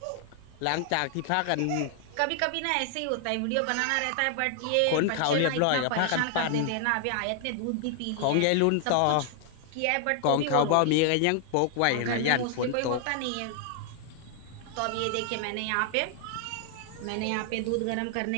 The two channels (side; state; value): both; different; correlation 0.00